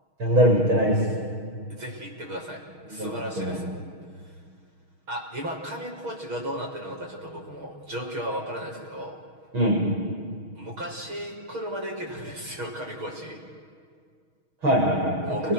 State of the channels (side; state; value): left; late; 6.3 ms